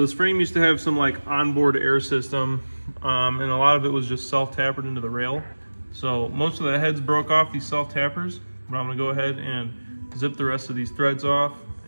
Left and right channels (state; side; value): inverted; both; correlation -1.00